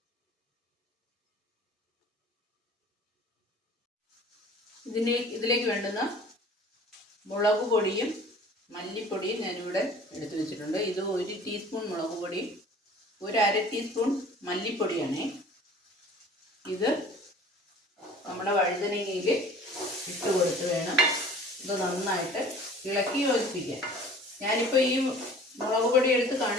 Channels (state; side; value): normal; both; correlation 0.47